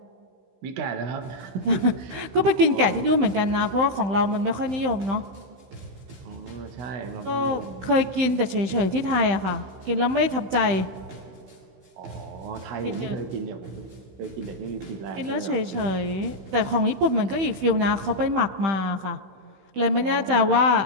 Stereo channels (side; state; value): left; late; 15 ms